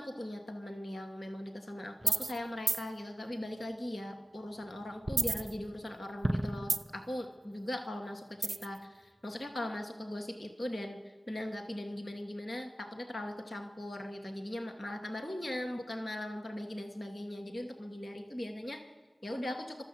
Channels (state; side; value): normal; both; correlation 0.95